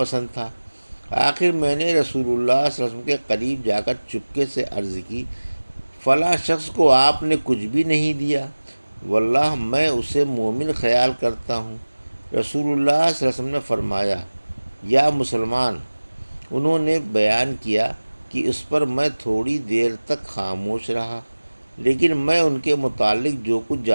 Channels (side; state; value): both; inverted; correlation -1.00